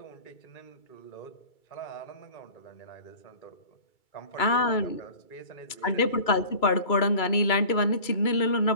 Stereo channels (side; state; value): right; late; 2.3 ms